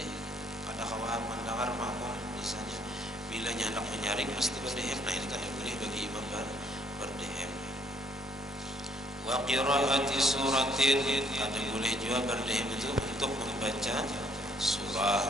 kada kawai mendengar makmum misalnya bila hendak menyaring pasti berdehem, nah ini kan boleh bagi imam berdehem. Wa qiraati suratin, ada boleh juga berdehem itu untuk membaca surah,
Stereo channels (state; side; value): normal; both; correlation 0.65